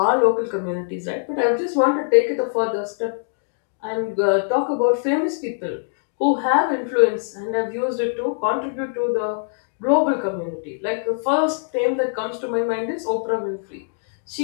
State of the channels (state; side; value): silent; right; digital silence